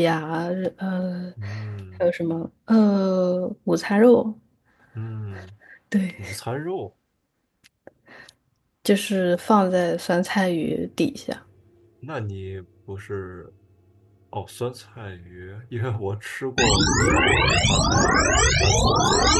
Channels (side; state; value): both; identical; correlation 1.00